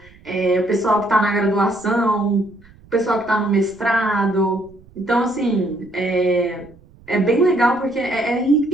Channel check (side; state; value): right; noise; rumble, 26 dB below the sound